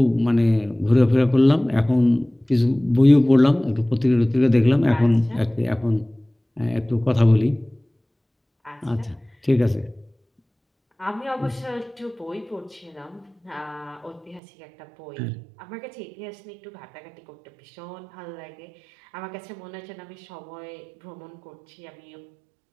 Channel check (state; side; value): drops out; left; at 14.4 s